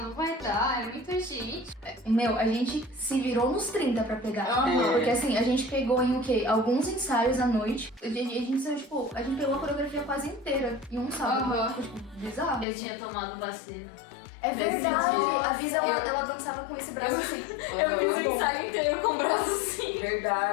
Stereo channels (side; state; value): right; drops out; at 12.7 s